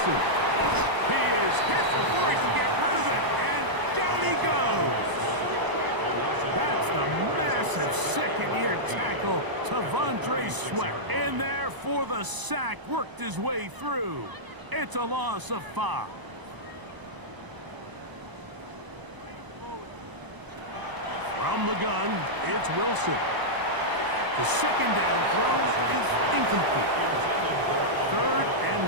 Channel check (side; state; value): left; late; 1.0 ms